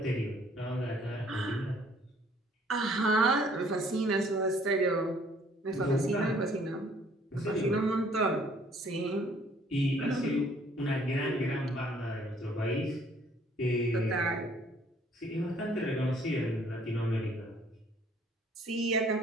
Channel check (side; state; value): both; normal; correlation 0.60